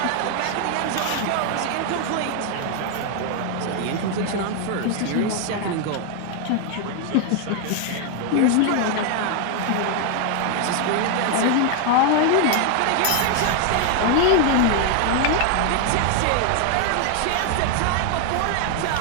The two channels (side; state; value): both; different; correlation 0.00